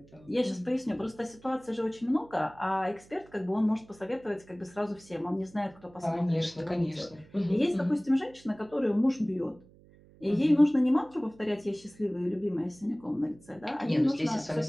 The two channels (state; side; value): noise; right; hum, 25 dB below the sound